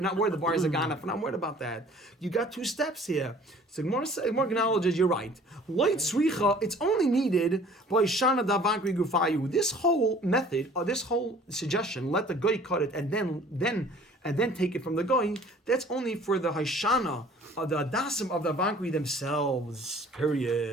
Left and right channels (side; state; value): both; normal; correlation 0.51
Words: The buyers are gone. We're not worried about that. You got two steps here. So Gemara acknowledges you're right. Light sricha. It's only needed by shana Vankri Gufayu. This whole method, or this whole suggestion, let the guy cut it and then take it from the guy. That's only for the Haishana or the Adasim of the Vankri themselves.